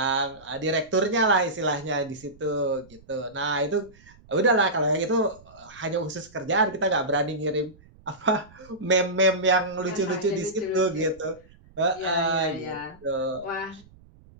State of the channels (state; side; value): noise; right; rumble, 25 dB below the sound